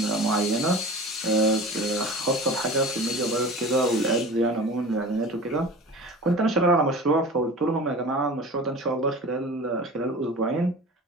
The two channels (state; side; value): normal; both; correlation 0.37